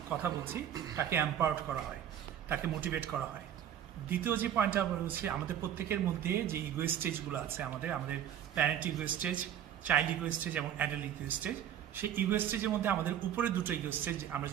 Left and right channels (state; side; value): quieter; left; 10.1 dB